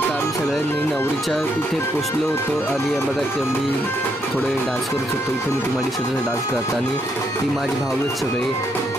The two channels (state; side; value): normal; both; correlation 0.76